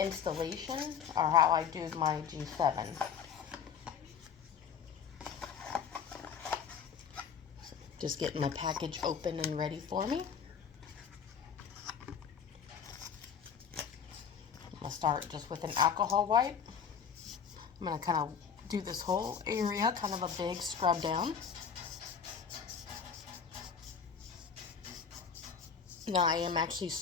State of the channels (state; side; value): quieter; right; 7.0 dB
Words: or how I do my G7. Just getting my package open and ready for me. I'm going to start just with an alcohol wipe. I'm going to kind of do this whole area, kind of a big scrub down. Now I am actually